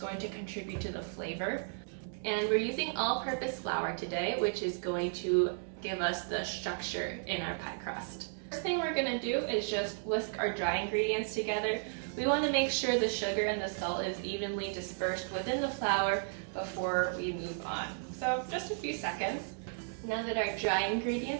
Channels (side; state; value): left; silent; digital silence